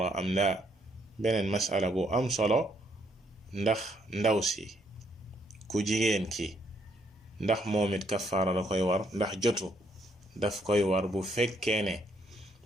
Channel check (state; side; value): normal; both; correlation 0.72